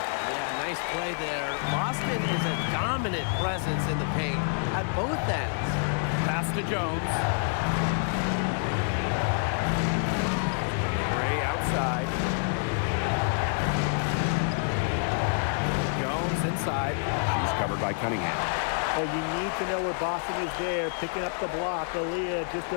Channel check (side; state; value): right; silent; digital silence